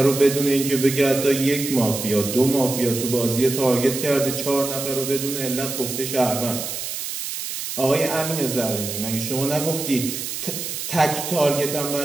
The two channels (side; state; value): right; noise; hiss, 5 dB below the sound